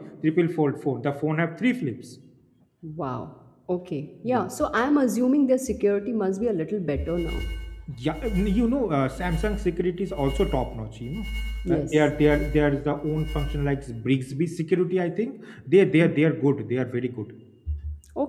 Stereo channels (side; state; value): both; identical; correlation 1.00